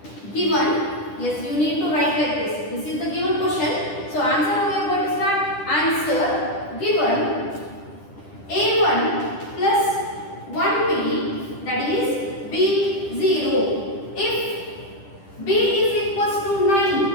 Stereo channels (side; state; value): right; late; 10 ms